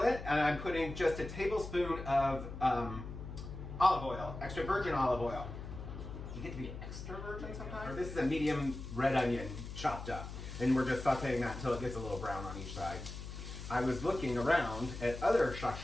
and I'm putting just a tablespoon of olive oil, extra virgin olive oil. You get to be extra virgin sometimes? This is a medium red onion chopped up, and we're just sauteing that until it gets a little brown on each side. I was looking around at other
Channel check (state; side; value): noise; left; hum, 9 dB below the sound